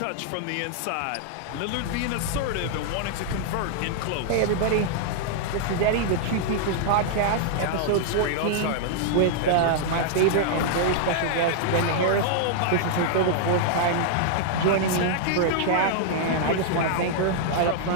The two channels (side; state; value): both; different; correlation -0.01